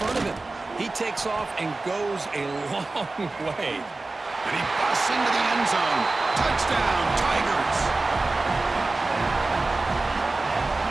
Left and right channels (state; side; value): quieter; left; 3.3 dB